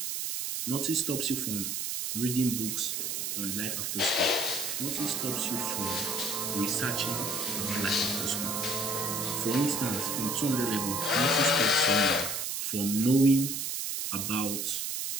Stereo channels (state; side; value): noise; right; hiss, 2 dB below the sound